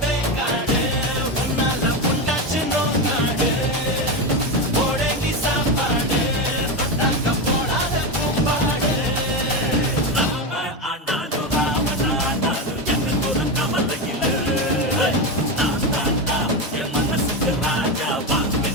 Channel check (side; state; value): both; normal; correlation 0.15